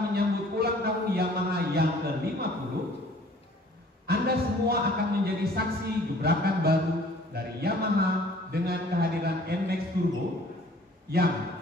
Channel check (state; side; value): normal; both; correlation 0.53